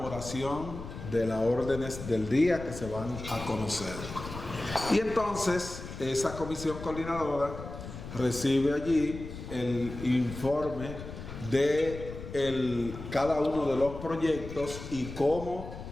de las órdenes del día que se van a conocer. Y entonces esa comisión coordinadora recibe allí el informe de cada uno de los proyectos y cómo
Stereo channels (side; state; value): left; noise; rumble, 10 dB below the sound